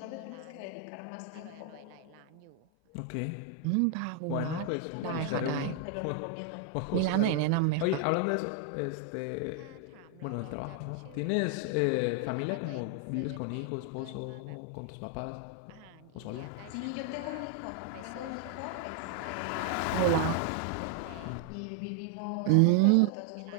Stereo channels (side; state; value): both; different; correlation 0.00